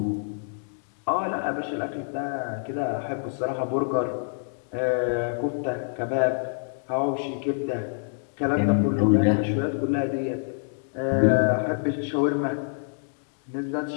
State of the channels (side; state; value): right; silent; digital silence